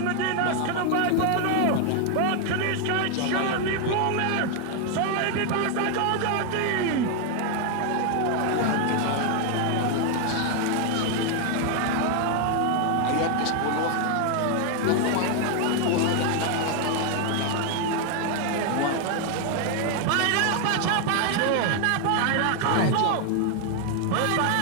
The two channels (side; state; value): both; different; correlation 0.00